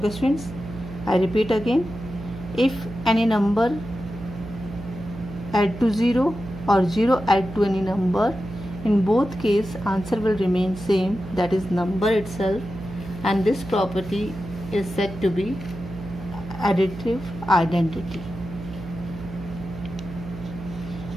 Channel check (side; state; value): right; noise; hum, 12 dB below the sound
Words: students, I repeat again, if any number add to 0 or 0 add to any number, in both cases answer will remain same, that is number itself, and this property is said to be additive identity.